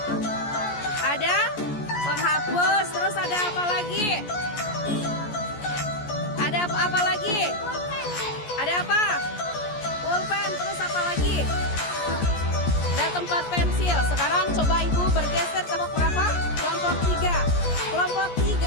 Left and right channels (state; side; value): late; right; 14 ms